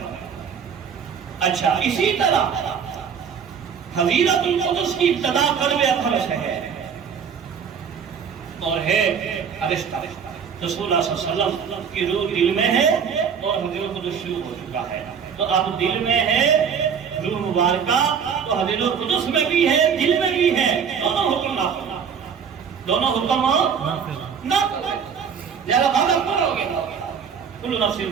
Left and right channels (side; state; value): left; quieter; 7.0 dB